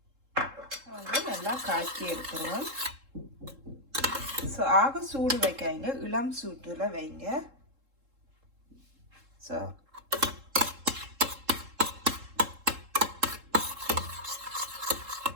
வந்து நல்லா காய்ச்சி எடுத்துருவோம். ஸோ ஆக சூடு வைக்காங்க, இளம் சூட்டில் வைங்க. ஸோ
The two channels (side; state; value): left; late; 3.7 ms